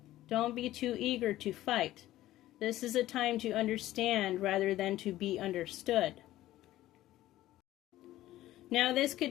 Don't be too eager to fight. This is a time to understand rather than to be understood. Now, this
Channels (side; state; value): right; quieter; 15.0 dB